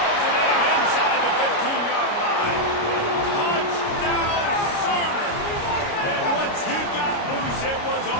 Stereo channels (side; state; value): right; late; 29 ms